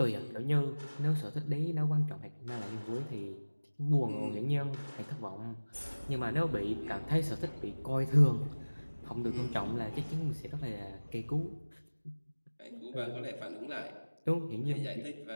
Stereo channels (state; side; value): inverted; both; correlation -1.00